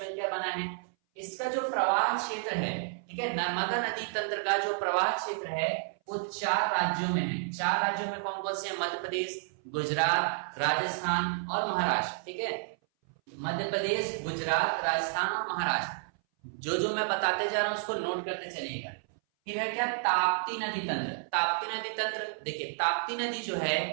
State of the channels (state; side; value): silent; left; 57 dB below the other